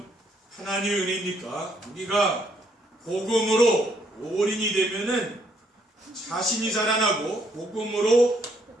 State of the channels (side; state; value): both; normal; correlation 0.70